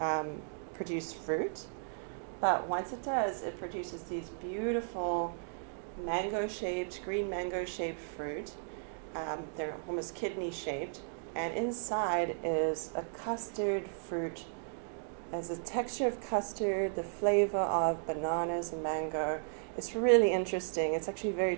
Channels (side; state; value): left; silent; digital silence